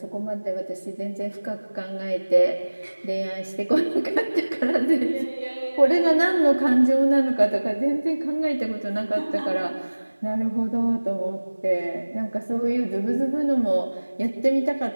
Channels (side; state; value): both; inverted; correlation -1.00